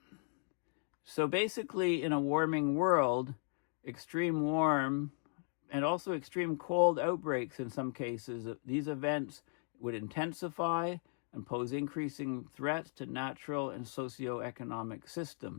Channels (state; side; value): silent; right; 53 dB below the other